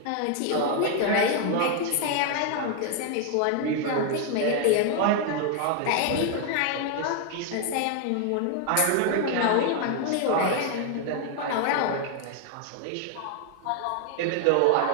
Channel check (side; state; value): both; different; correlation 0.00